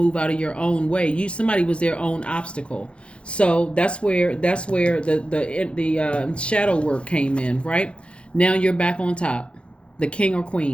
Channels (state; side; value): late; right; 0.059 ms